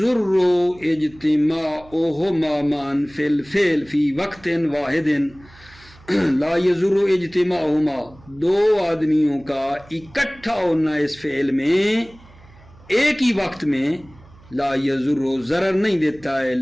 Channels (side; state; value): right; noise; hum, 25 dB below the sound